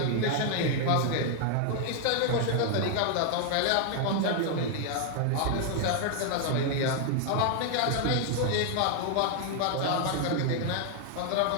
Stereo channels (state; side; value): different; both; correlation 0.00